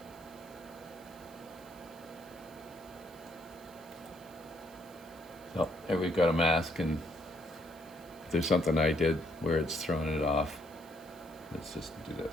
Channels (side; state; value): right; noise; hiss, 23 dB below the sound